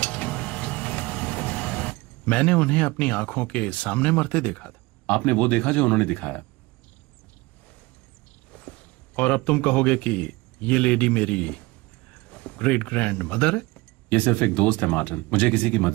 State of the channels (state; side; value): quieter; left; 22.3 dB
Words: मैंने उन्हें अपनी आंखों के सामने मरते देखा था। आपने वो देखा जो उन्होंने दिखाया, और अब तुम कहोगे कि ये लेडी मेरी ग्रेट ग्रैंड मदर है? ये सिर्फ एक दोस्त है मार्टिन, मुझे किसी की